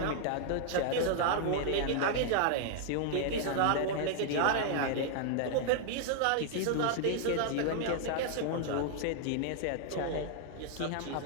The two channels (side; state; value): both; different; correlation 0.00